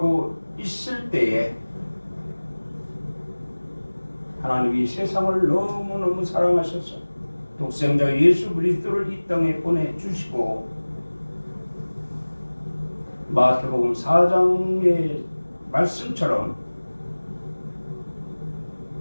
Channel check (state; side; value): inverted; both; correlation -1.00